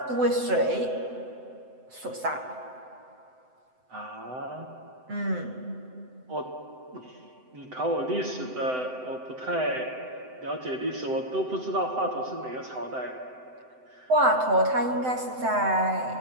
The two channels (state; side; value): late; left; 7.8 ms